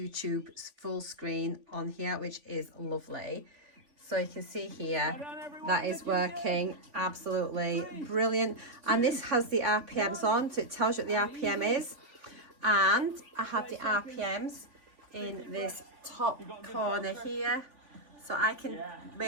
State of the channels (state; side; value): late; left; 3.5 ms